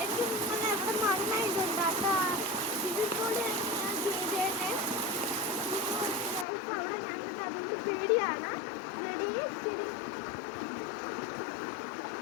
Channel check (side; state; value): right; drops out; at 6.5 s